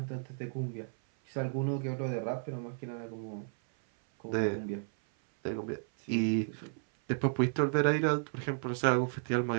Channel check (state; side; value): silent; left; 56 dB below the other